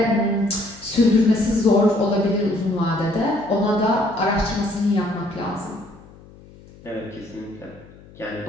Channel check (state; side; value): noise; left; hum, 22 dB below the sound